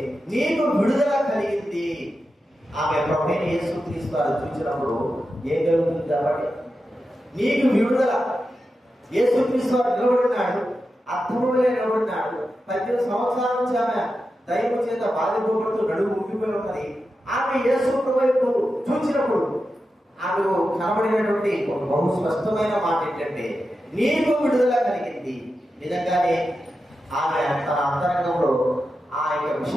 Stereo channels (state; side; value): normal; both; correlation 0.90